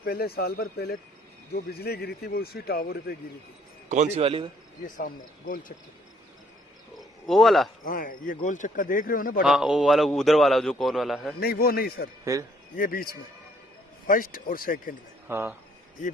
साल भर पहले जो बिजली गिरी थी वो उसी टावर पे गिरी थी। कौन सी वाली है? ये सामने गोल चक्का, वो वाला। हाँ, ये गोल चक्का देख रहे हो ना बड़ा। हाँ, वो वाला उधर वाला जो कौन वाला है? नहीं, वो नहीं सर, फिर ये बीच में फर्स्ट और सेकंड में। हाँ, ये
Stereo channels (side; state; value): both; normal; correlation 0.64